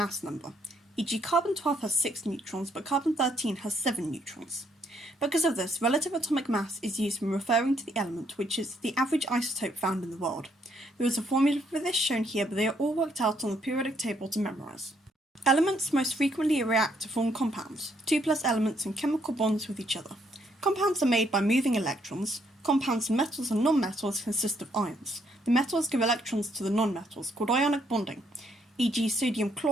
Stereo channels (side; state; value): both; normal; correlation 0.71